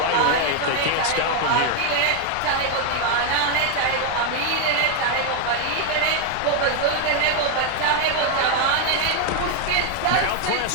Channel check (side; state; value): both; different; correlation 0.01